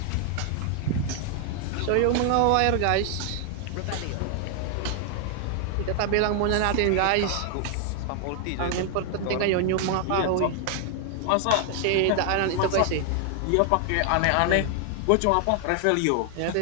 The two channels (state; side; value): different; both; correlation 0.00